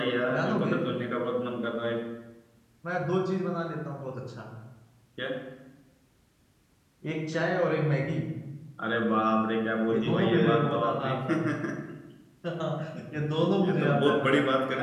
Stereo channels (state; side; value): identical; both; correlation 1.00